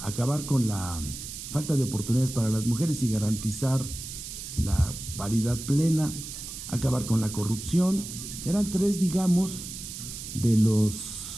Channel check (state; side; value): noise; right; hiss, 9 dB below the sound